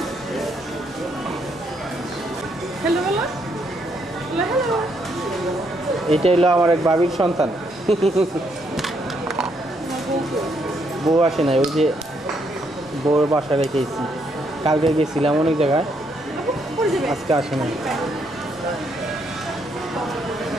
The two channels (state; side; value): normal; both; correlation 0.74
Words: এটা হলো আমার এক ভাবির সন্তান। বউ আসে নাই, ওই যে বউর বাসা রেখেছি। কালকে গেছিলাম অনেক জায়গায়, আজকে আসে নাই।